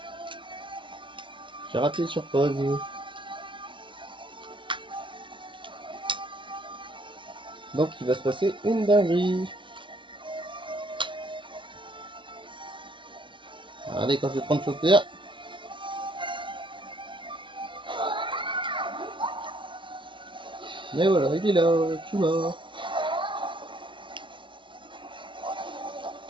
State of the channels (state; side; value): late; left; 0.24 ms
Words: j'ai raté sur pause. Donc, il va se passer une dinguerie. Regardez quand je vais prendre chauffeur. Mais voilà, il est là, tout mort.